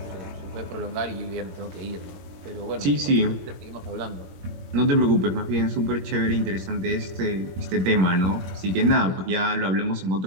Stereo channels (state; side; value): late; left; 21 ms